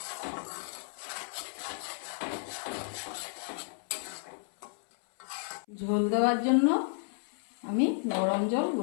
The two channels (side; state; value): right; silent; 56 dB below the other